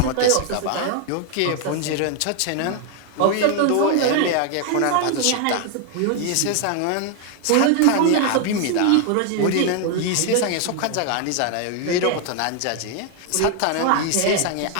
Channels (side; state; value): both; different; correlation 0.00